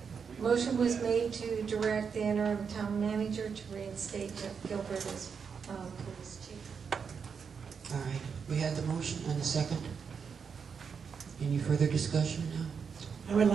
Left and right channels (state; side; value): quieter; left; 6.2 dB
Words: motion was made to direct the interim town manager to reinstate Jeff Gilbert as police chief. All right, we had the motion and the second. Any further discussion now? I would